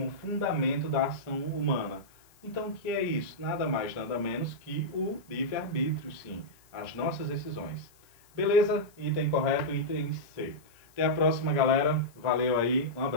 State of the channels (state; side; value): noise; left; hiss, 30 dB below the sound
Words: fundamento da ação humana. Então, o que é isso? Nada mais, nada menos que o livre-arbítrio, sim. As nossas decisões. Beleza? Item correto, item C. Até a próxima, galera. Valeu aí. Um